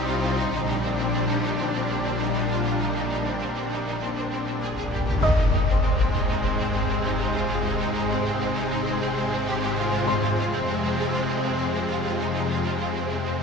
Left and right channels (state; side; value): normal; both; correlation 0.49